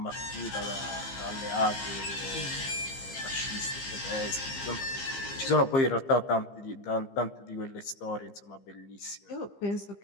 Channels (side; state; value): right; late; 15 ms